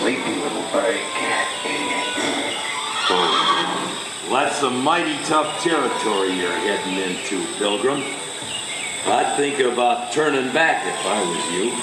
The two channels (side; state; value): both; identical; correlation 1.00